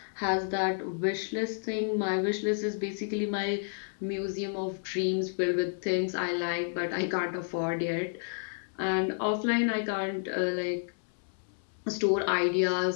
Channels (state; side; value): silent; right; digital silence